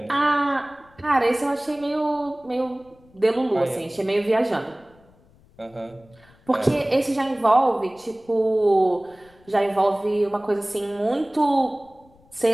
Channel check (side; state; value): left; noise; rumble, 29 dB below the sound